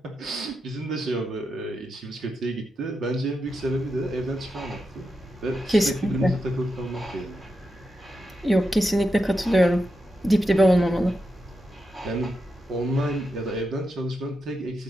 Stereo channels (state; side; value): normal; both; correlation 0.87